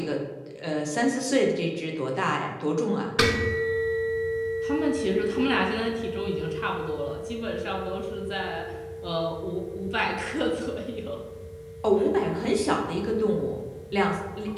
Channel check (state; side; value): identical; both; correlation 1.00